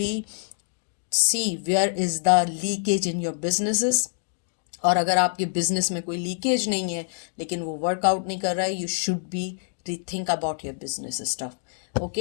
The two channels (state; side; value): silent; right; digital silence